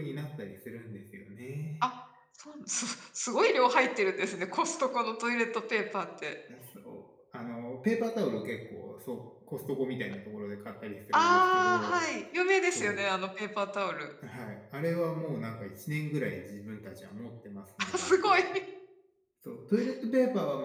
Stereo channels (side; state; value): both; identical; correlation 1.00